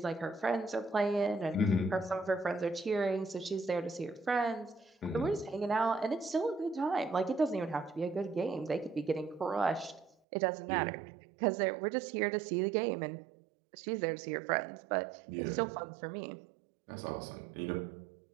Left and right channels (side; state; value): left; drops out; at 10.2 s